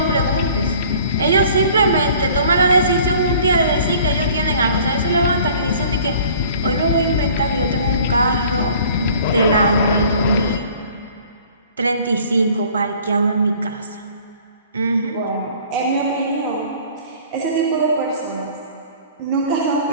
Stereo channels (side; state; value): both; inverted; correlation -0.51